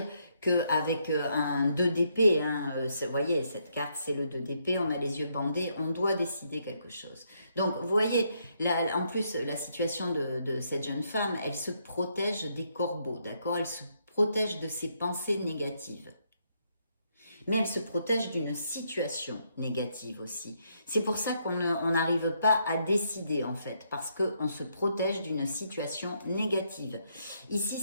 qu'avec un 2 d'épée, hein, vous voyez, cette carte, c'est le 2 d'épée, on a les yeux bandés, on doit décider quelque chose. Donc, vous voyez, là, en plus, la situation de cette jeune femme, elle se protège des corbeaux, d'accord? Elle se protège de ses pensées négatives. Mais elle se protège d'une situation négative aussi. C'est pour ça qu'on n'arrive pas à décider en fait, parce qu'on se protège d'une situation négative.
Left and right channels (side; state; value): both; inverted; correlation -0.75